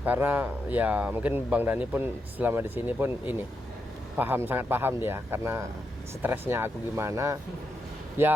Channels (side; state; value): both; normal; correlation 0.84